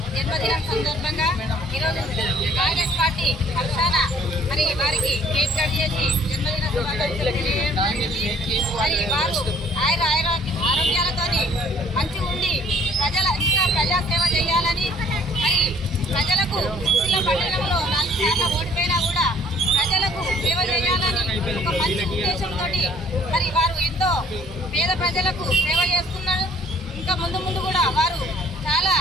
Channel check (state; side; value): normal; both; correlation 0.57